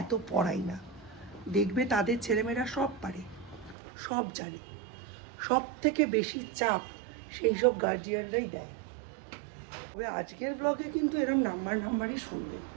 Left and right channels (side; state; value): left; drops out; at 3.8 s